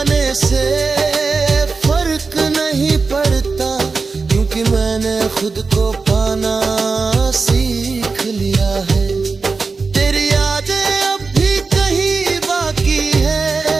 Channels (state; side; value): quieter; left; 4.4 dB